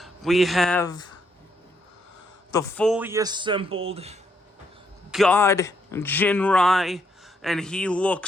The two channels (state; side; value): normal; both; correlation 0.75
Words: we have the fully assembled God Jinrai, and he